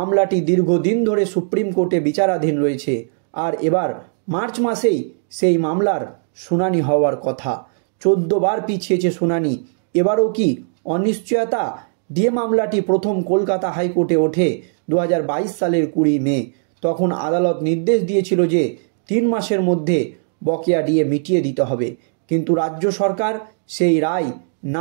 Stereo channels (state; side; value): silent; left; digital silence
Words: দীর্ঘদিন ধরে সুপ্রিম কোর্টে বিচারাধীন রয়েছে। আর এবার মার্চ মাসেই সেই মামলার শুনানি হওয়ার কথা। 14 বার পিছিয়েছে শুনানি। এবারও কি অনিশ্চয়তা? ডিএ মামলাটি প্রথম কলকাতা হাইকোর্টে ওঠে 2022 সালের 20 মে। তখন আদালত নির্দেশ দিয়েছিল যে 3 মাসের মধ্যে বকেয়া ডিএ মিটিয়ে দিতে হবে। কিন্তু রাজ্য সরকার সেই রায়